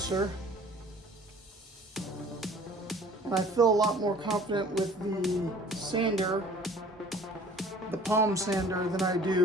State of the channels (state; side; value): normal; both; correlation 0.50